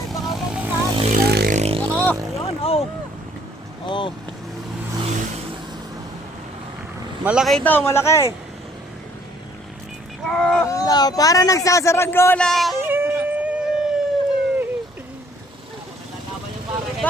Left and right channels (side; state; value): both; normal; correlation 0.61